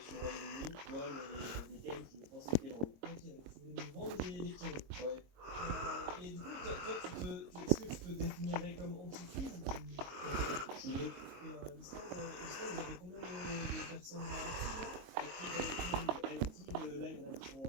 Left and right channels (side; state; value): left; late; 22 ms